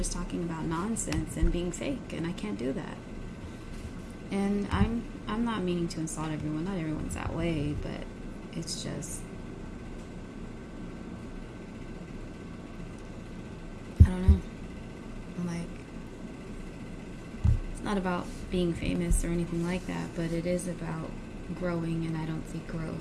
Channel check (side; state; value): both; identical; correlation 1.00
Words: talking about nonsense and being fake, and I can't do that. And I'm not meaning to insult everyone. Not everyone's that way, but it's just, I don't know. Like, it's not about being famous or anything like that, but it is about growing, and I don't see